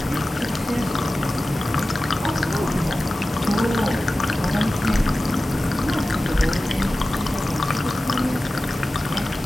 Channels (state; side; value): normal; both; correlation 0.95